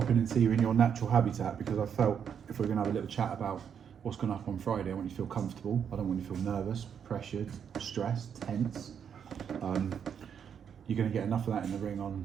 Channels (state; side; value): quieter; left; 7.8 dB